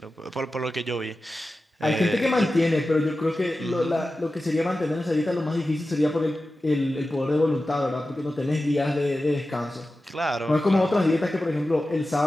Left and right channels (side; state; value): both; normal; correlation 0.94